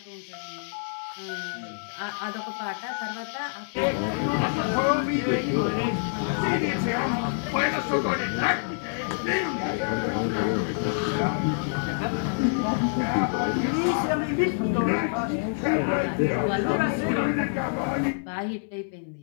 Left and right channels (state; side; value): silent; right; 60 dB below the other